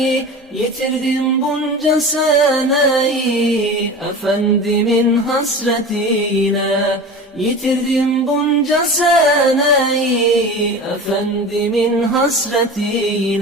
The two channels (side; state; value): both; normal; correlation 0.33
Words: Yitirdim bunca seneyi, Efendimin hasretiyle. Yitirdim bunca seneyi, Efendimin